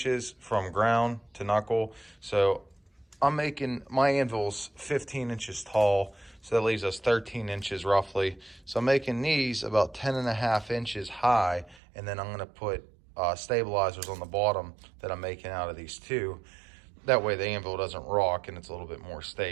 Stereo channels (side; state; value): left; drops out; at 11.8 s